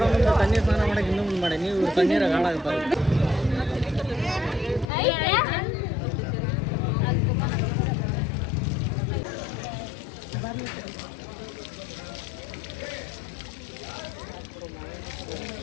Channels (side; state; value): right; drops out; at 4.9 s